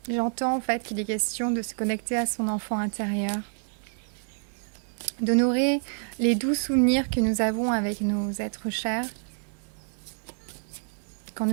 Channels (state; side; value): silent; left; digital silence